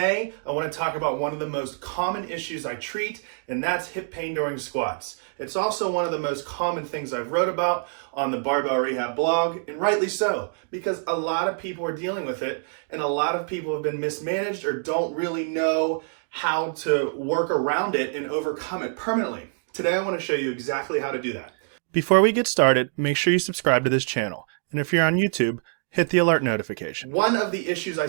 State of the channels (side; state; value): left; silent; 61 dB below the other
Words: I want to talk about one of the most common issues I treat, and that's hip pain during squats. It's also one of the most common things I've wrote about on the Barbell Rehab blog, and rightly so, because a lot of people are dealing with it, and a lot of people have been mismanaged or don't really know how to work around it and overcome it permanently. Today, I want to show you exactly how to do that. Before we get started, make sure you subscribe to this channel. And if you're on YouTube, hit the alert notification. One of the issues I